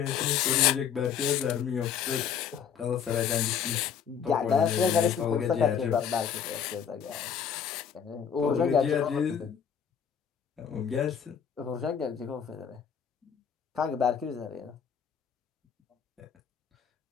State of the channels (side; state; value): right; quieter; 7.7 dB